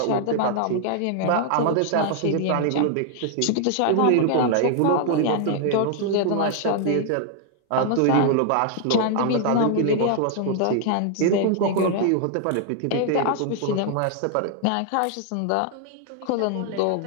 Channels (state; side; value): different; both; correlation 0.00